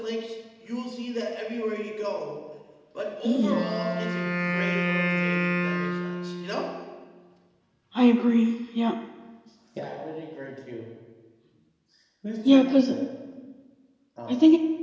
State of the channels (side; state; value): both; identical; correlation 1.00